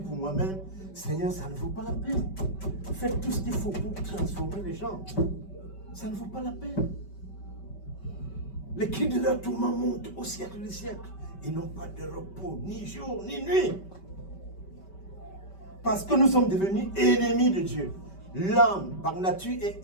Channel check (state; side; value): late; right; 5.2 ms